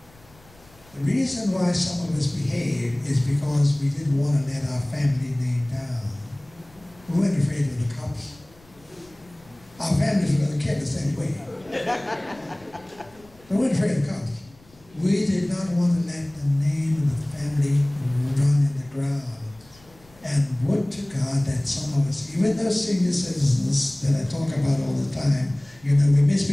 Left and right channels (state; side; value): noise; left; rumble, 27 dB below the sound